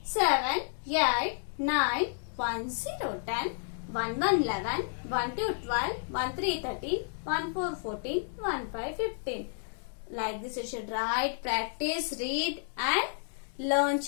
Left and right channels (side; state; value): right; silent; digital silence